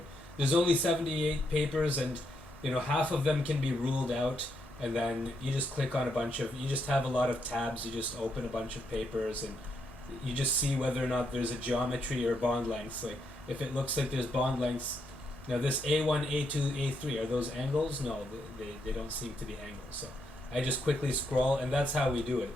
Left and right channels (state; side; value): normal; both; correlation 0.79